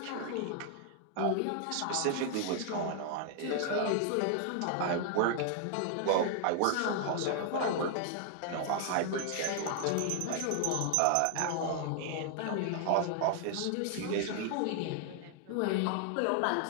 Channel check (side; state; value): both; different; correlation 0.00